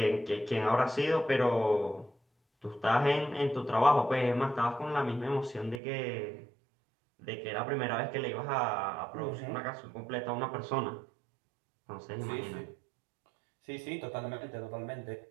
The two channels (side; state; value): left; drops out; at 5.8 s